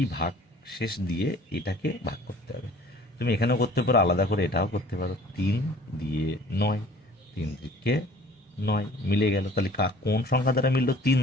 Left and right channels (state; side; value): normal; both; correlation 0.50